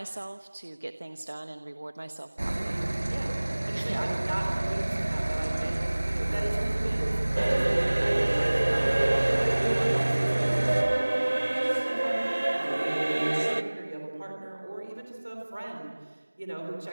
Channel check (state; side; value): inverted; both; correlation -1.00